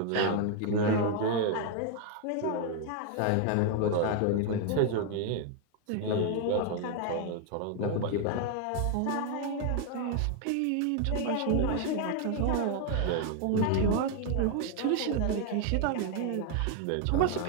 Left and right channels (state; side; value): different; both; correlation 0.01